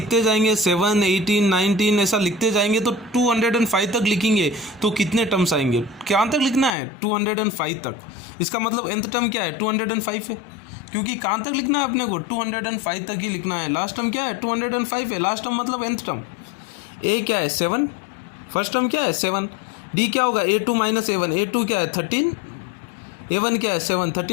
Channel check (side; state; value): right; drops out; at 6.7 s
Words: जाएंगे 7, 18, 19 ऐसा लिखते जाएंगे तो 205 तक लिखेंगे तो कितने टर्म्स आएंगे, क्या तक लिखना है 205 तक। इसका मतलब nth टर्म क्या है 205 है, क्योंकि कहाँ तक लिखना है अपने को 205 तक ही लिखना है। लास्ट टर्म क्या है 205 है, लास्ट टर्म मतलब nth टर्म। a क्या है 7, फर्स्ट टर्म क्या है 7, d क्या होगा a2 माइनस a1, a2 क्या है 13, a1 क्या है 7,